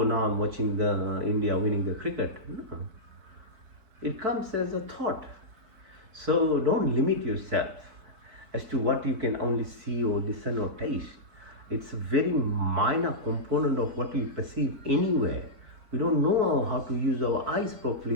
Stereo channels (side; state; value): left; late; 4.6 ms